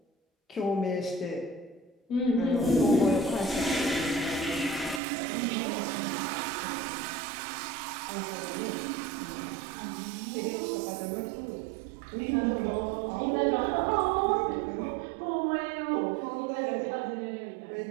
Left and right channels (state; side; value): drops out; left; at 5.0 s